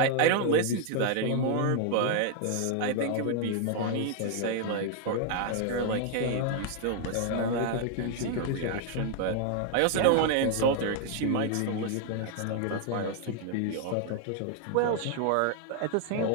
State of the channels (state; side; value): different; both; correlation 0.00